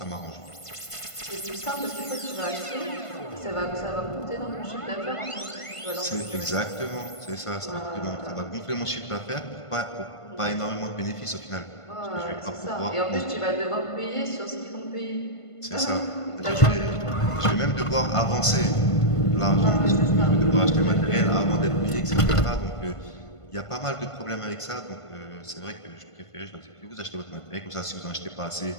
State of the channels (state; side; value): late; right; 1.5 ms